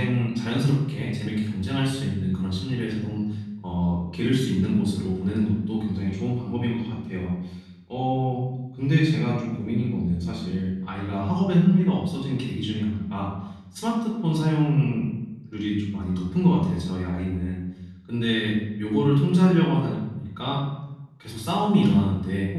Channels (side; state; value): both; identical; correlation 1.00